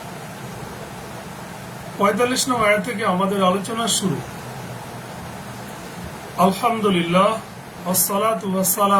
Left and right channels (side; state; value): both; identical; correlation 1.00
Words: ৪৫ নং আয়াত থেকে আমাদের আলোচনা শুরু। আলহামদুলিল্লাহ ওয়াসসালাতু